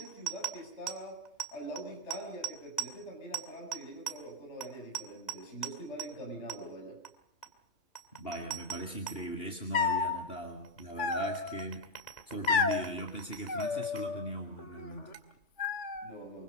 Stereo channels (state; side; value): late; right; 2.8 ms